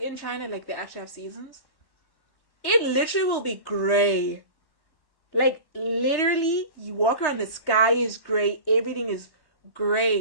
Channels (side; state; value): right; late; 1.1 ms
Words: in China, like they actually have seasons. It literally will be gray. Like literally, you walk around, the sky is gray. Everything is